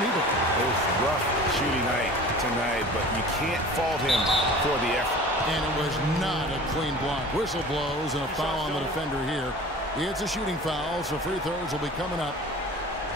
either. It was rough shooting night tonight, but you can't fault him for the effort. And it was not a clean block. Whistle blows and a foul on the defender here. It's a shooting foul, so free throws will be coming up.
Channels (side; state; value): both; normal; correlation 0.41